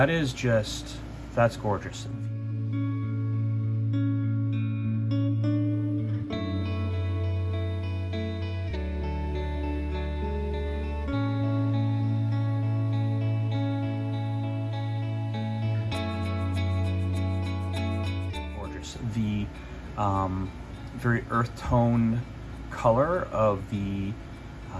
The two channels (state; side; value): identical; both; correlation 1.00